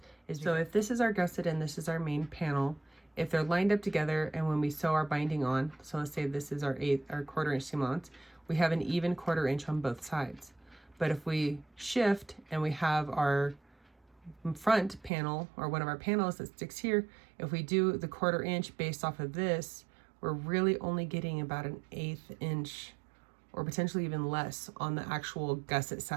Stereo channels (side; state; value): left; drops out; at 15.1 s